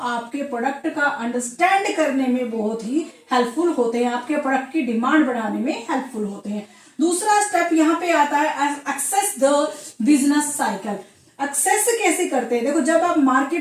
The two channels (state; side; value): identical; both; correlation 1.00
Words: प्रोडक्ट का अंडरस्टैंड करने में बहुत ही हेल्पफुल होते हैं, आपके प्रोडक्ट की डिमांड बढ़ाने में हेल्पफुल होते हैं। दूसरा स्टेप यहाँ पे आता है access the business cycle. Access कैसे करते हैं, देखो जब आप